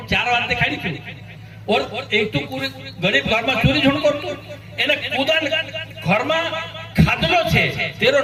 4 बात देखाड़ी छे और एक तो पूरे गरीब घर में चोरी झूठ करतो एने खुदा घर में खादलो छे तेरो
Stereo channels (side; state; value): both; identical; correlation 1.00